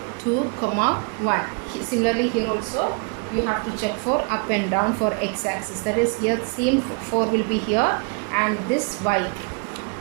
2, 1. Similarly here also you have to check for up and down for x-axis. That is, here same 4 will be here and this y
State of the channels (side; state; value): left; quieter; 34.1 dB